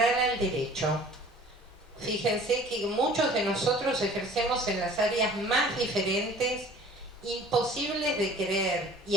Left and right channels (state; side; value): normal; both; correlation 0.49